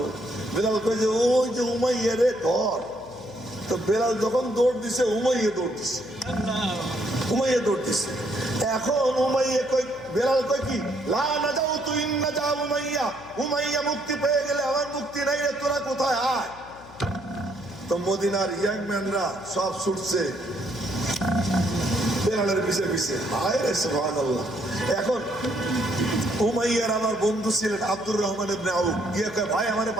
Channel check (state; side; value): noise; left; hum, 20 dB below the sound